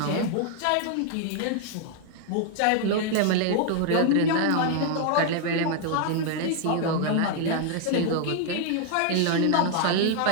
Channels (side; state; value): both; different; correlation 0.00